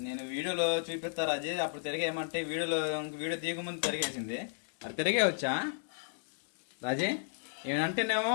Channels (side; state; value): right; silent; digital silence